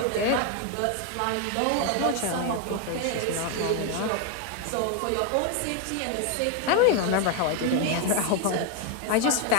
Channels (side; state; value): both; different; correlation 0.01